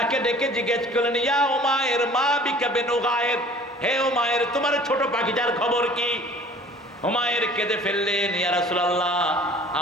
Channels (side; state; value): both; normal; correlation 0.48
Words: ডেকে জিজ্ঞেস করলেন, ইয়া উমায়ের মা বিকা বিনুগায়ের, হে উমায়ের তোমার ছোট পাখিটার খবর কি? উমায়ের কেঁদে ফেললেন, ইয়া রাসূলুল্লাহ